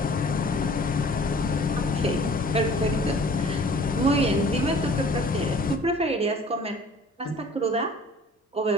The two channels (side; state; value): both; normal; correlation 0.49